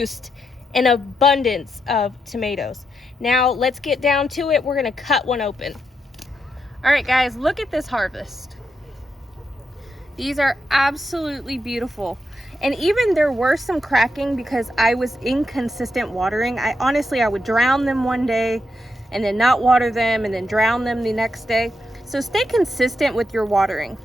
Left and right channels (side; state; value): both; normal; correlation 0.83